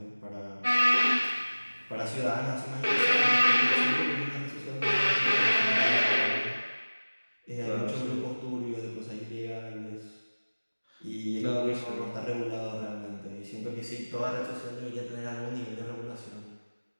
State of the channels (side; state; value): both; inverted; correlation -1.00